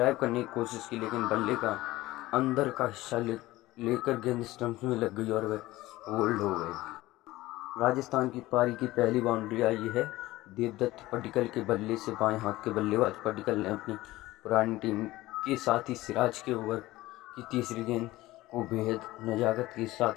करने की कोशिश की, लेकिन बल्ले का अंदर का हिस्सा लेकर गेंद स्टंप में लग गई और वह होल्ड हो गए। राजस्थान की पारी की पहली बाउंड्री आई है देवदत्त पडिक्कल के बल्ले से। बाएं हाथ के बल्लेबाज पडिक्कल ने अपनी पुरानी टीम के साथ ही सिराज के ओवर की तीसरी गेंद को बेहद नजाकत के साथ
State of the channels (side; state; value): right; quieter; 17.8 dB